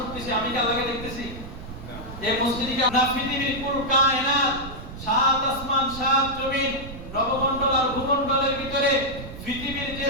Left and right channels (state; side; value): noise; right; rumble, 12 dB below the sound